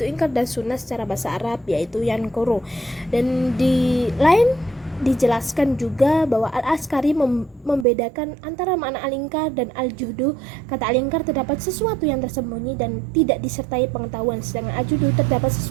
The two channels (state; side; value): drops out; left; at 7.9 s